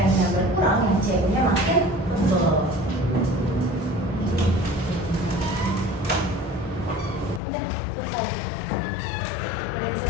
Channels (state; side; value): drops out; right; at 7.4 s